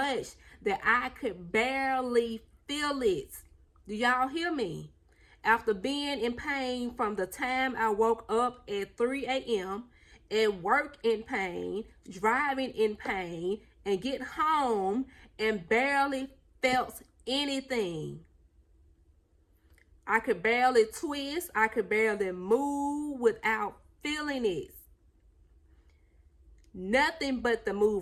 that I could barely feel it. Do y'all hear me? After being in pain from the time I woke up at 3 a.m., at work in pain, driving in pain, and get home and barely felt anything. I could barely twist. I could barely move without feeling it. Nothing but the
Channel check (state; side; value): identical; both; correlation 1.00